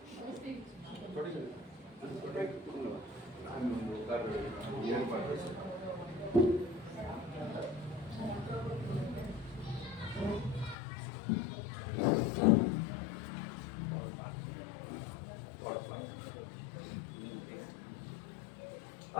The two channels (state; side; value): drops out; right; at 10.8 s